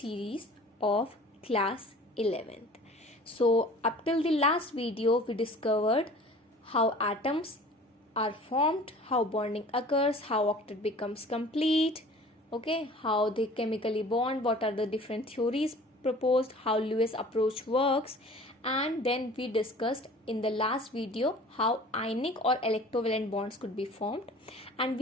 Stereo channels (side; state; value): both; normal; correlation 0.46